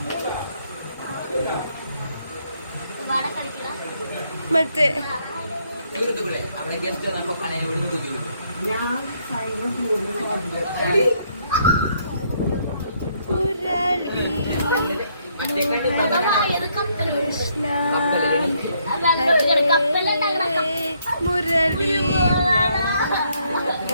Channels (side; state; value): both; inverted; correlation -0.71